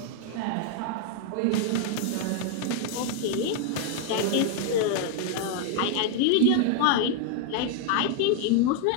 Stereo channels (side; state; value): both; different; correlation 0.00